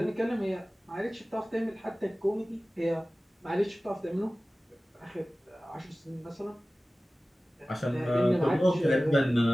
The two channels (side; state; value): both; normal; correlation 0.97